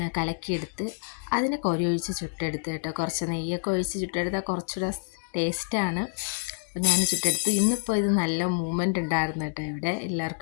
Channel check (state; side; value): silent; right; digital silence